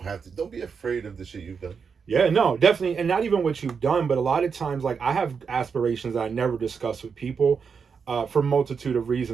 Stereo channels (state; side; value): quieter; left; 6.0 dB